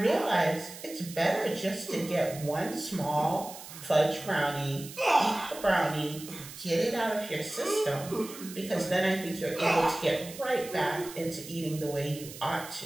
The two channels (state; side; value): noise; right; hiss, 14 dB below the sound